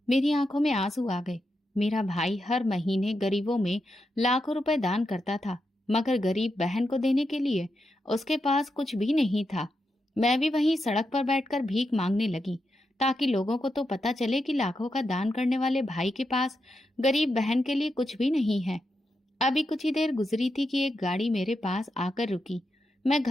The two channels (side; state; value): both; normal; correlation 0.86